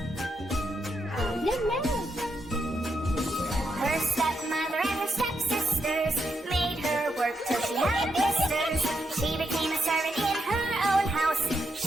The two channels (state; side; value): normal; both; correlation 0.82